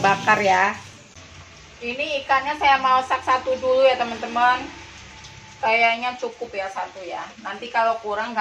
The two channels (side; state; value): both; identical; correlation 1.00